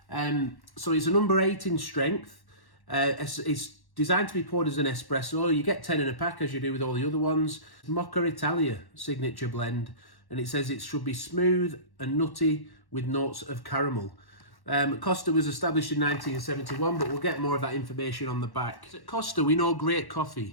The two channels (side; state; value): right; late; 1.1 ms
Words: So it's a number 8 in strength. It's designed to be poured as an espresso. You get 10 in a pack as you do with all the other ones. Mocha Italia signature blend, and it says it should be smooth and nutty with notes of caramel. Costa was established in 1971, but we'll get more of that information on the back. At Costa, we know great